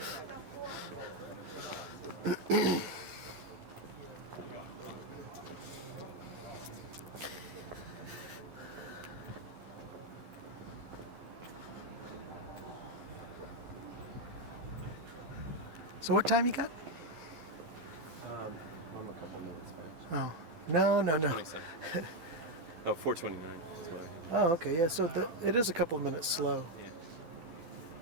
So what time you got? I'm a couple minutes back. Oh, no. 27. Oh, 4:29 is what I have. Oh, okay, yeah, so it is a couple of minutes slow. Yeah.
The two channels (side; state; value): left; late; 12 ms